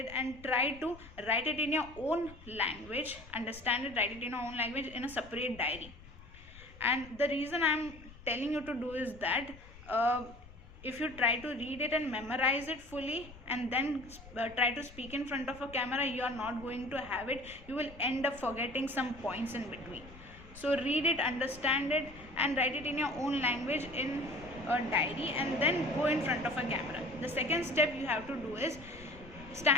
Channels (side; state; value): left; noise; rumble, 19 dB below the sound